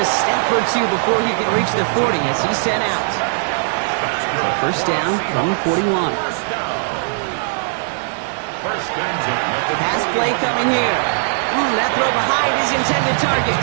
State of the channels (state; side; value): silent; left; digital silence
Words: step or 2 before he can reach the 40 as he's sent out. So 1st down from the 41. Pass play coming here. That throw behind his intended